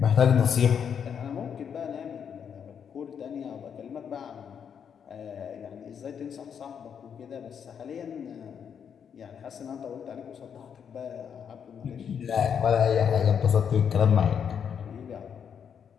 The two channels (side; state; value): right; quieter; 7.6 dB